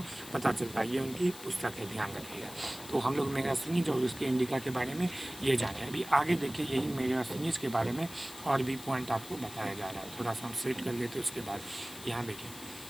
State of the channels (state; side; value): noise; left; hiss, 14 dB below the sound